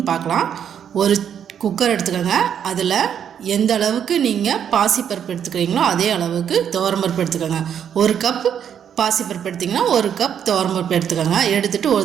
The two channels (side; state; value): left; quieter; 8.7 dB